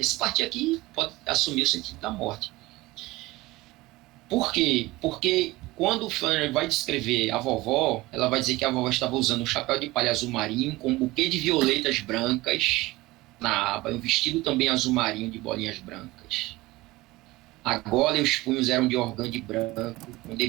partir aqui pode assumir o sentido da morte. Por quê? Porque quando o Flannery vai descrever a vovó, ela vai dizer que a vovó estava usando um chapéu de palha azul marinho com um buquê de violetas brancas na aba e um vestido também azul marinho de bolinhas brancas. A gola e os punhos eram de organde branco, com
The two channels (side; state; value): left; quieter; 19.8 dB